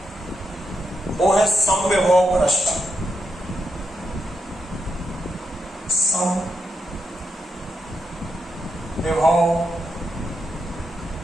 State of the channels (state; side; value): normal; both; correlation 0.84